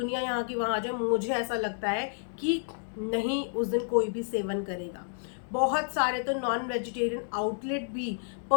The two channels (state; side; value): silent; right; digital silence